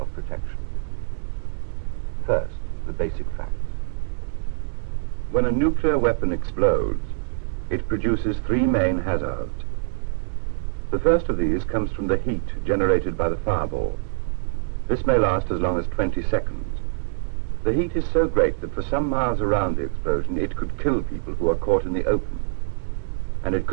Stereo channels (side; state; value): left; silent; 62 dB below the other